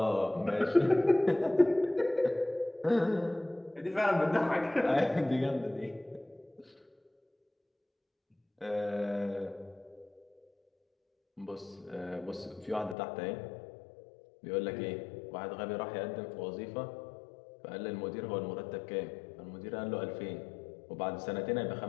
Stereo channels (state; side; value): drops out; right; at 13.0 s